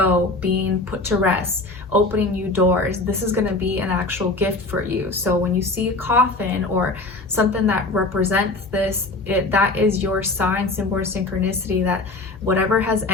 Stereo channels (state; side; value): quieter; right; 3.1 dB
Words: being put to rest, opening new doors. This is going to be an actual gift for you. So when you see a coffin or something that represents this, that is your sign, symbol, or synchronicity, that whatever has